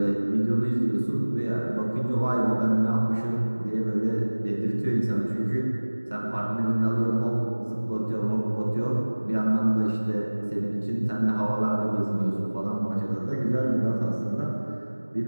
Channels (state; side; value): inverted; both; correlation -1.00